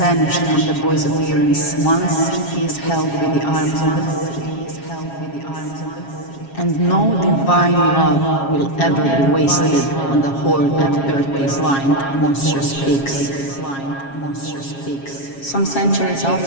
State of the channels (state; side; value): late; right; 7.3 ms